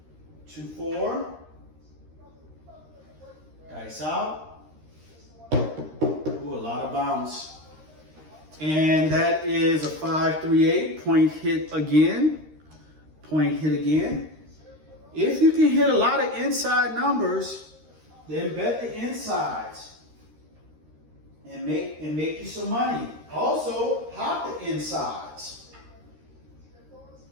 2, 4. Dice out. Ooh, a lot of bounce. And that is a 5, 3, 8. Point hit again. Point hit again. If you can hit a lot of inside numbers, then bet the insides and make you some money. Also, hop the insides.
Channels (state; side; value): late; left; 13 ms